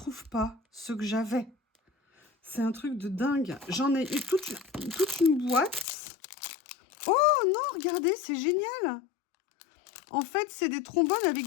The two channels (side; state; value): right; drops out; at 5.9 s